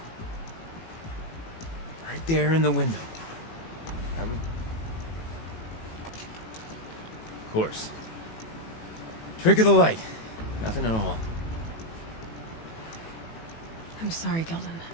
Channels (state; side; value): late; right; 18 ms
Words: Right there in the window. I would... Of course. Trick of the light. Nothing at all. I'm sorry, Gilden.